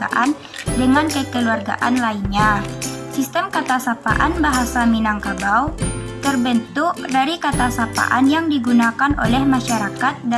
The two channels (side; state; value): both; identical; correlation 1.00